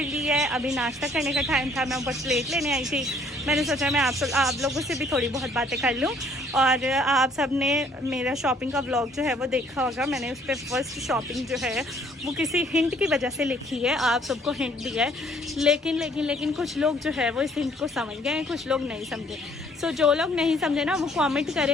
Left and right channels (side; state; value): both; normal; correlation 0.61